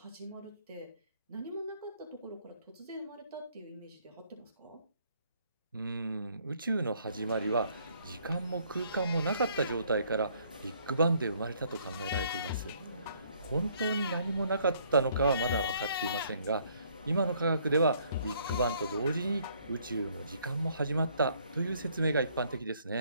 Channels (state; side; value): inverted; both; correlation -0.65